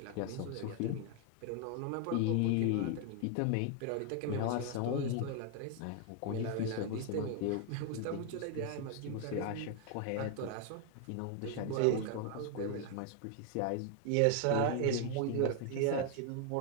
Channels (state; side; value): different; both; correlation 0.00